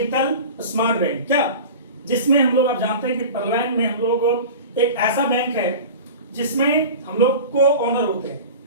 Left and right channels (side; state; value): both; inverted; correlation -0.34